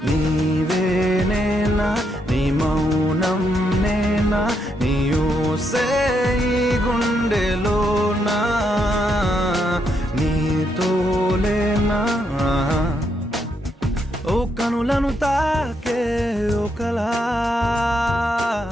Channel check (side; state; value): both; normal; correlation 0.78